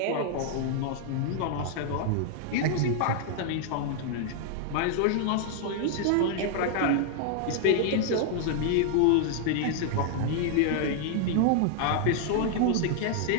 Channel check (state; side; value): different; both; correlation 0.00